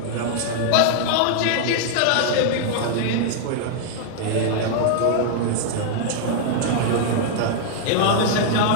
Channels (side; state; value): both; different; correlation 0.00